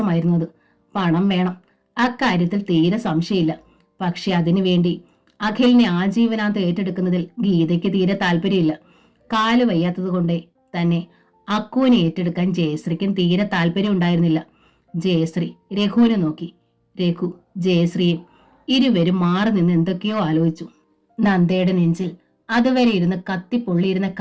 പണം വേണം, അക്കാര്യത്തിൽ തീരെ സംശയമില്ല. പക്ഷെ അതിനുവേണ്ടി അഖിലിനെ ആജീവനാന്ത് ഏറ്റെടുക്കുന്നതിൽ ഗീതയ്ക്ക് തീരെ താല്പര്യമില്ല. കാല് വയ്യാത്തത് കൊണ്ടേ തന്നെ അക്കുവിനെ ഏറ്റെടുക്കാൻ ജയശ്രീക്കും തീരെ താല്പര്യം ഉണ്ടായിരുന്നില്ല. ജയശ്രീ രഘുവിനെ നോക്കി. രഘു ജയശ്രീയും. ഇരുവരും മാറി നിന്ന് എന്തൊക്കെയോ ആലോചിച്ചു. നന്ദയുടെ നെഞ്ചിൽ അതുവരെ ഇരുന്ന് കത്തിപ്പൊള്ളിയിരുന്ന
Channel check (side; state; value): both; identical; correlation 1.00